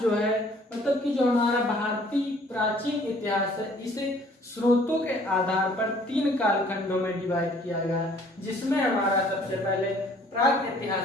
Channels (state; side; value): normal; both; correlation 0.57